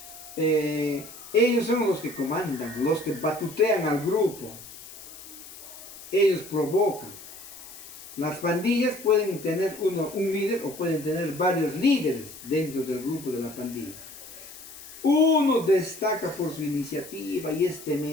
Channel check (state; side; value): noise; left; hiss, 16 dB below the sound